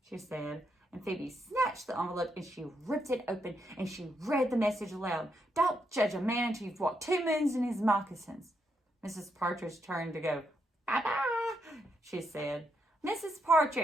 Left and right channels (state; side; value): normal; both; correlation 0.80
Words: She said. And Phoebe snatched the envelope and she ripped it open and she read the message aloud. Don't judge a man until you've walked 2 moons in his moccasins. Mrs. Partridge turned to go. Bye-bye, she said. Mrs.